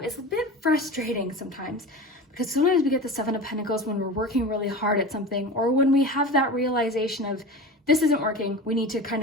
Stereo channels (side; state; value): both; normal; correlation 0.31